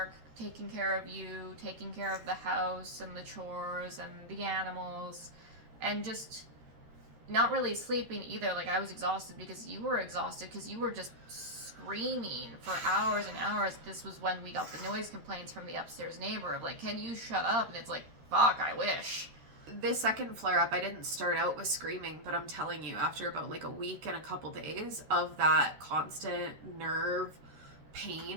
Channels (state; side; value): late; left; 13 ms